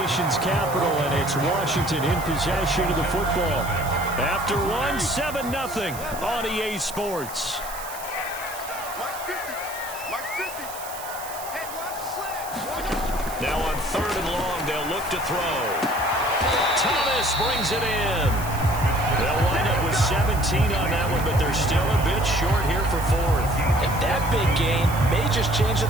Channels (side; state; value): right; noise; hiss, 13 dB below the sound